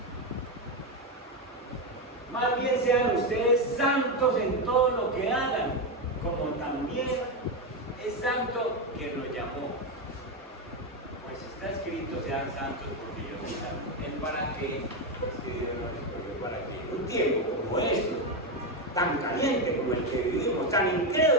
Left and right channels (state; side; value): normal; both; correlation 0.09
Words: Más bien sean ustedes santos en todo lo que hagan, como también es santo quien nos llamó. Pues está escrito: sean santos porque yo soy santo. ¿El para qué? Para que un tiempo como este, tan caliente como el que vivimos, tan